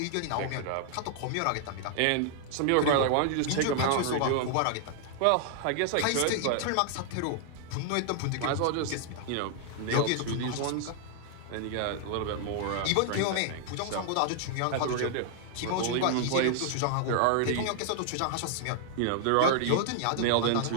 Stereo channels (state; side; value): different; both; correlation 0.00